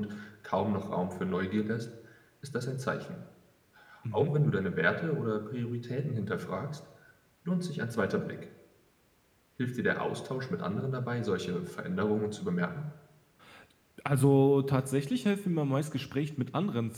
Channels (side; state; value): both; identical; correlation 1.00